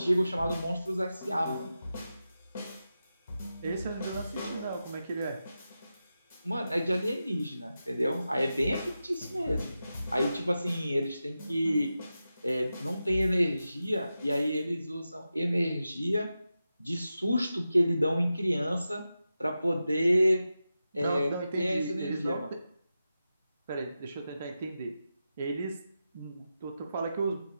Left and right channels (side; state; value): both; inverted; correlation -0.91